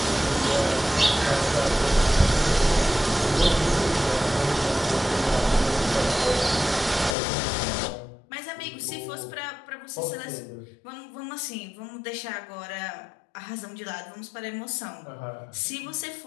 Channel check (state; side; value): drops out; right; at 7.2 s